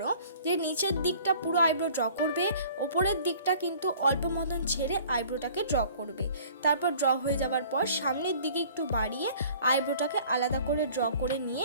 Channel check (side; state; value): both; inverted; correlation -0.51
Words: যে নিচের দিকটা পুরো আইব্রো ড্র করবে, ওপরের দিকটা কিন্তু অল্প মতন ছেড়ে আইব্রোটাকে ড্র করবে। তারপর ড্র হয়ে যাওয়ার পর সামনের দিকে একটু বাড়িয়ে আইব্রোটাকে আলাদা করে ড্র করে নিয়ে